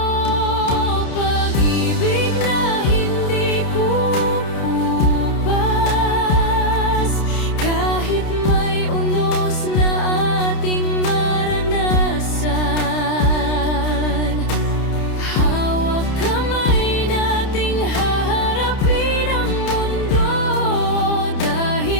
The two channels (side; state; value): right; late; 30 ms